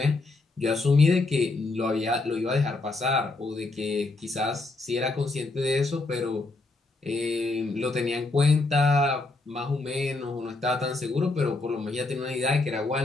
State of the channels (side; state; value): right; quieter; 3.3 dB